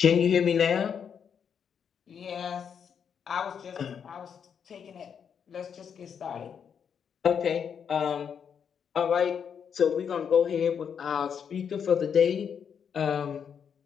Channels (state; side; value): quieter; right; 7.4 dB